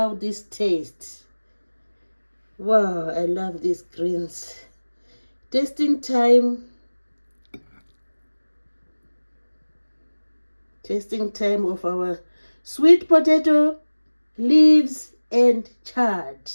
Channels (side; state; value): both; inverted; correlation -1.00